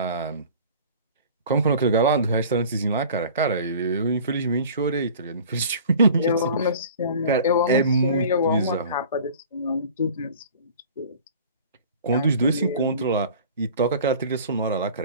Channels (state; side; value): inverted; both; correlation -0.44